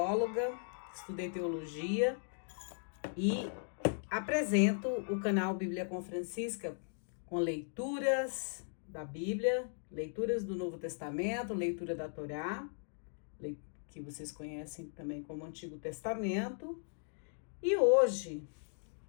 estudei teologia e apresento o canal Bíblia com Francisca com leituras da Bíblia, leituras do Novo Testamento, leitura da Torá, que vocês conhecem também como Antigo Testamento. E hoje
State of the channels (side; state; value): right; silent; digital silence